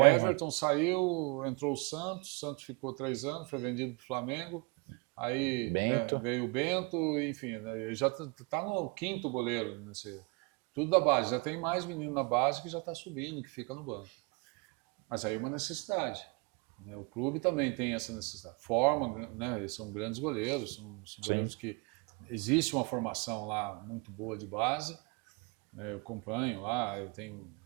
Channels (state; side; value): quieter; left; 30.9 dB